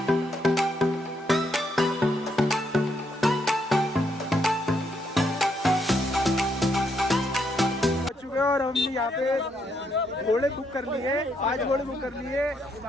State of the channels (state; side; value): normal; both; correlation 0.76